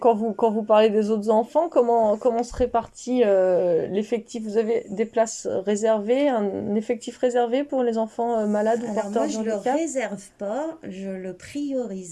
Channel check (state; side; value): identical; both; correlation 1.00